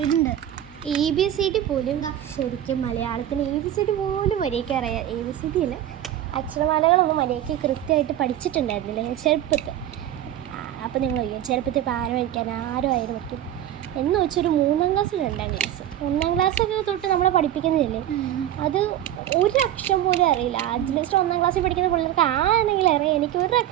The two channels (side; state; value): left; quieter; 11.9 dB